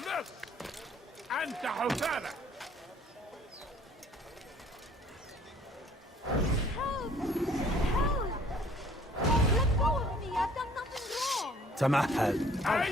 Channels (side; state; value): both; normal; correlation 0.56